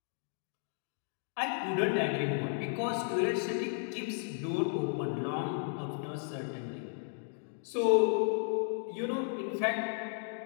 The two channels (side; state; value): right; silent; digital silence